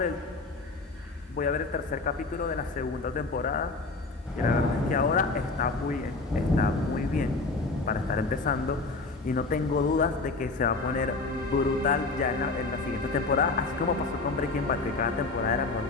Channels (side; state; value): right; quieter; 3.7 dB